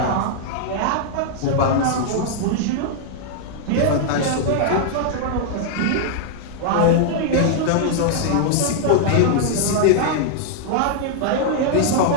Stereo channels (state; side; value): different; both; correlation -0.01